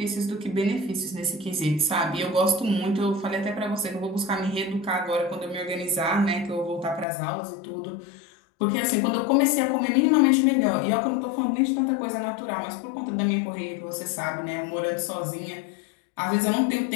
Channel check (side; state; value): right; drops out; at 7.1 s